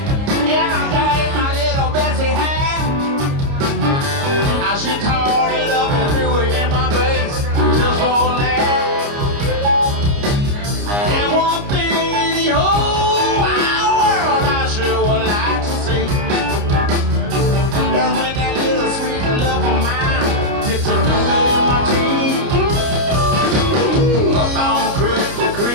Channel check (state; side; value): late; left; 29 ms